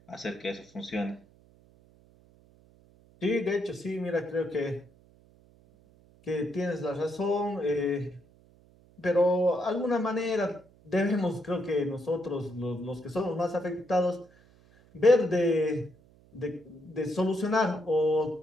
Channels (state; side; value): noise; right; hum, 28 dB below the sound